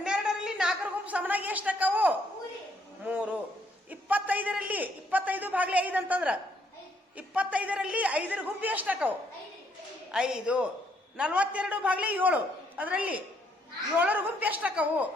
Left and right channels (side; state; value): both; normal; correlation 0.70